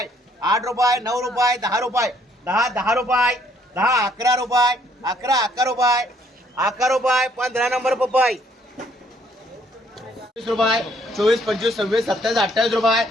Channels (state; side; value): normal; both; correlation 0.66